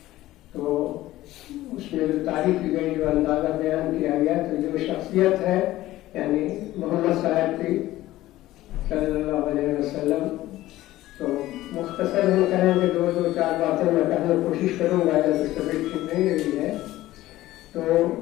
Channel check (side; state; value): right; quieter; 15.9 dB